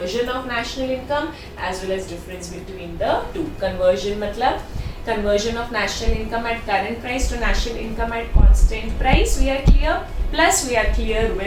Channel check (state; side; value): identical; both; correlation 1.00